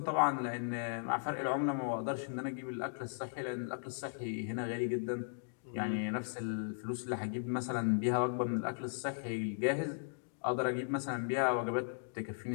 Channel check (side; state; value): right; silent; digital silence